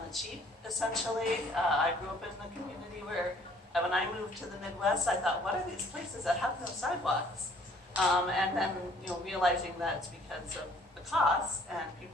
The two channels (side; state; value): both; normal; correlation 0.58